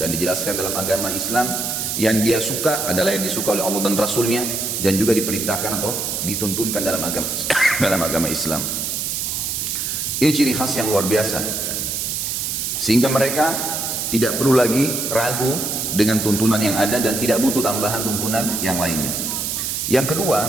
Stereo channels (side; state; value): right; noise; hiss, 2 dB below the sound